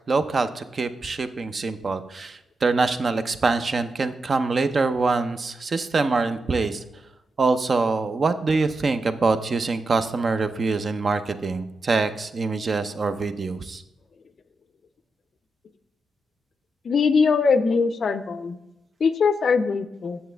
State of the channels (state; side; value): normal; both; correlation 0.85